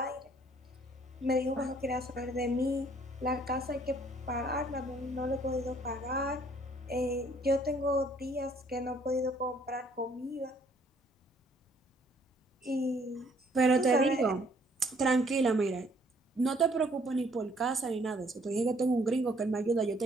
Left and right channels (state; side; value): normal; both; correlation 0.62